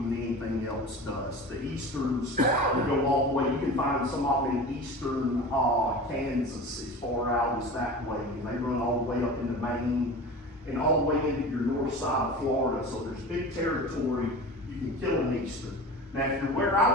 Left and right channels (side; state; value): both; normal; correlation 0.34